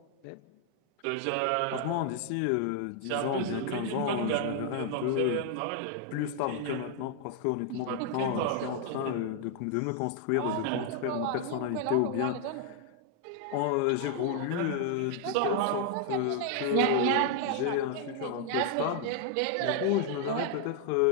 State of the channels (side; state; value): both; different; correlation 0.00